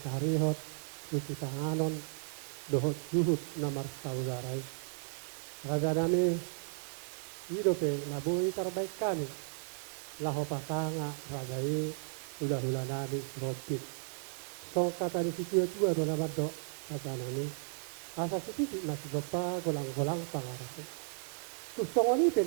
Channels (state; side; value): silent; left; digital silence